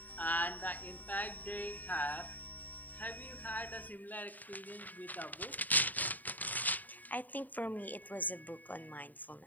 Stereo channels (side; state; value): right; late; 0.084 ms